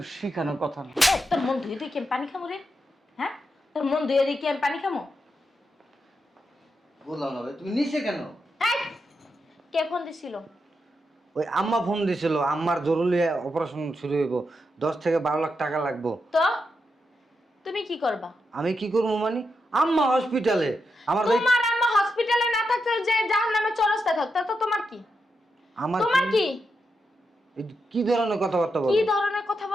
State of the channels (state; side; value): normal; both; correlation 0.85